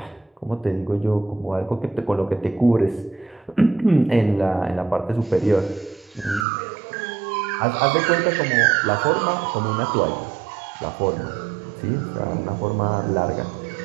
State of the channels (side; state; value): left; drops out; at 6.5 s